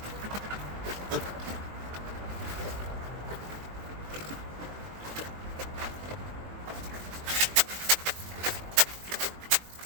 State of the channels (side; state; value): left; late; 21 ms